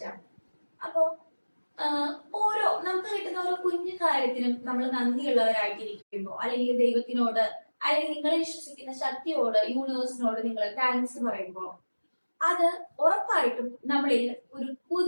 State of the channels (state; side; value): inverted; both; correlation -1.00